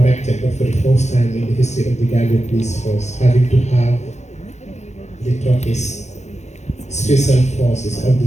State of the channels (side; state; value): right; late; 0.33 ms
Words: but for the first time in the history of the Gambia Police Force, having to have the Turkish Special Forces of the